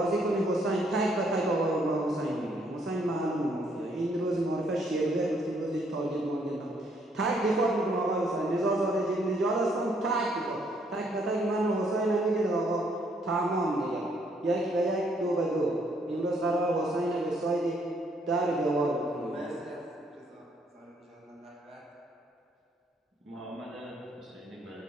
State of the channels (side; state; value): both; normal; correlation 0.69